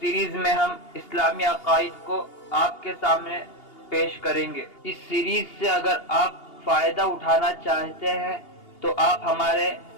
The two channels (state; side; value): late; right; 2.8 ms